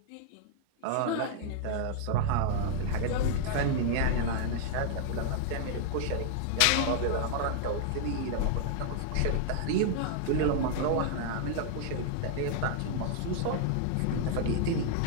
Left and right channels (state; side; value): different; both; correlation -0.01